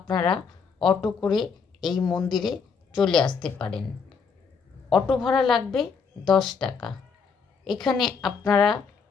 অটো করে এই মন্দিরে চলে আসতে পারেন। অটো ভাড়া লাগবে 10 টাকা। এখানে আপনারা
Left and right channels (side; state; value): right; quieter; 5.7 dB